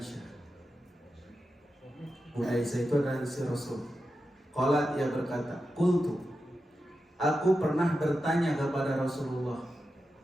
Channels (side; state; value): both; normal; correlation 0.90